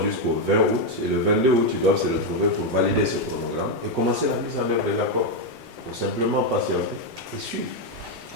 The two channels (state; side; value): normal; both; correlation 0.03